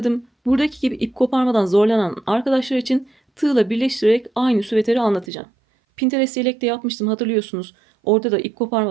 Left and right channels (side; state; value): left; drops out; at 5.2 s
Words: Buradaki gibi ip koparmadan zorlanan arkadaşlar için tığla birleştirerek aynı süveteri anlatacağım. Pinterest yelekte yapmıştım hatırlıyorsunuz. Orada da ip